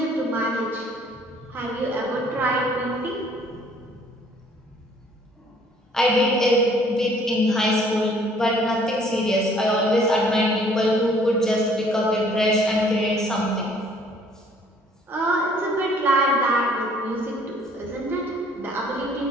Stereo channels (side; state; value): both; normal; correlation 0.58